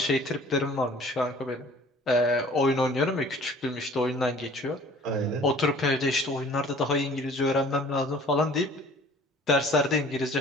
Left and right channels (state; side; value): normal; both; correlation 0.50